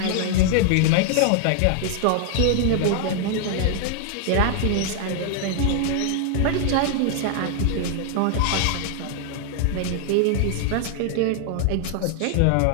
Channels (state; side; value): different; both; correlation 0.00